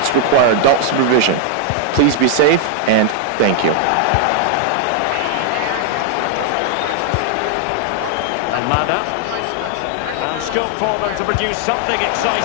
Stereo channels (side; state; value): both; different; correlation 0.00